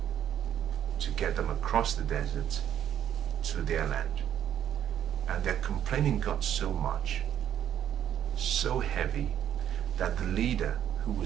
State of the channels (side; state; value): left; quieter; 10.3 dB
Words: to get them across the desert to their land. And their complaining got so much, so heavy, that the leader who